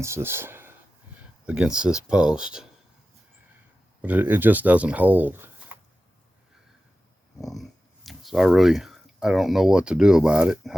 this post. But it just doesn't hold. So I don't know what to do about it,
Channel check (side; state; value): both; normal; correlation 0.94